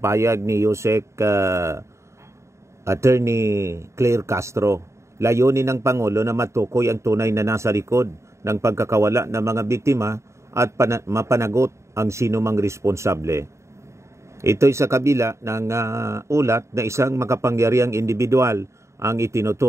ni Yusek Attorney Claire Castro, layunin ng Pangulo na matukoy ang tunay na nasa likod ng pagkakawala ng mga biktima at mapanagot ang sinumang responsable. Ito'y sa kabila ng ulat na isang makapangyarihang individual ang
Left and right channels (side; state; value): left; late; 0.14 ms